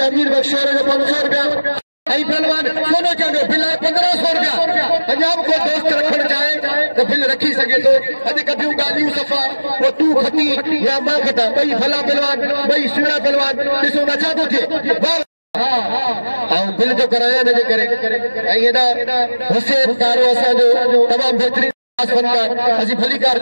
अमीर बख्शोर जो 500 रुपया आई पहलवान सोनो चाहे बिल 1500 रुपया पंजाब को दोस्त रखण चाहे तो बिल रखी सके तो अॼु कढियूं ॻाल्हियूं सफ़ा वो तू खटी या मां खटा ॿई भला पहलवान ॿई सुहिणा पहलवान ॾिसो न छा थो थिए ऐं बिल जो कराया हिनजे करे ऐं हेॾा हुसैन तारो असांजो तमामु बहितरीन फनकार असीं भलीकार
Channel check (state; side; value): inverted; both; correlation -1.00